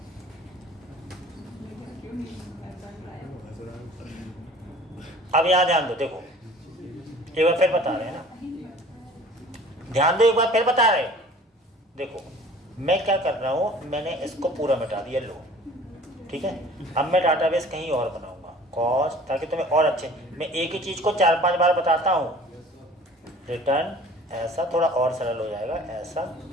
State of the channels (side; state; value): both; normal; correlation 0.47